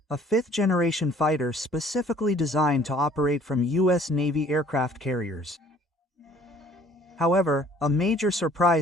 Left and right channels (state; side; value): normal; both; correlation 0.55